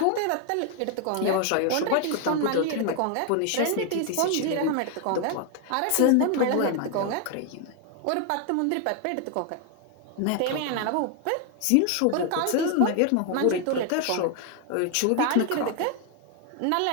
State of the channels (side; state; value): both; different; correlation 0.00